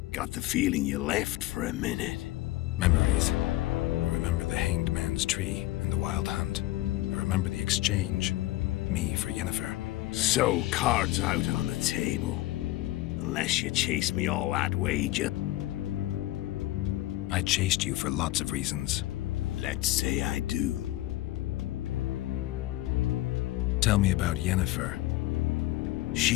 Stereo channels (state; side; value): quieter; right; 17.1 dB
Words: Got the feeling you left for a minute. Memories. I remember the Hanged Man's Tree and the Wild Hunt. I remember the exchange. Me for Yennefer. So, cards out on the table. Unless you chase me all that way, I chased you for lots of reasons. Let's say I do. Tell me about Yennefer.